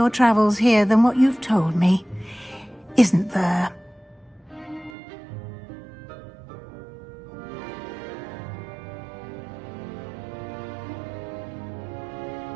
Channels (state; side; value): drops out; left; at 5.0 s